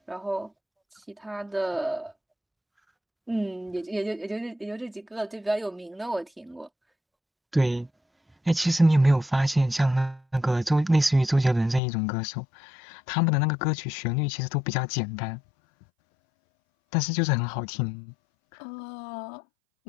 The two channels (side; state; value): right; drops out; at 11.8 s